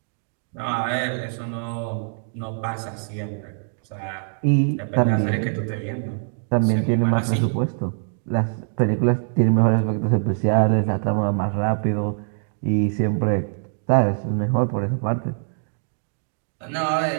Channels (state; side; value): silent; left; digital silence